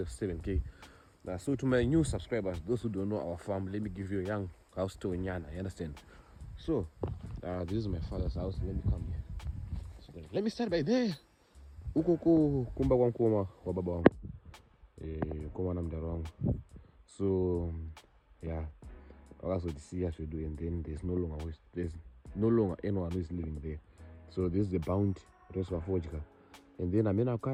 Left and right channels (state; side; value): identical; both; correlation 1.00